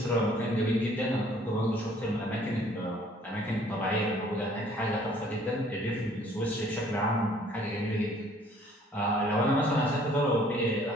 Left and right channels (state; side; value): normal; both; correlation 0.58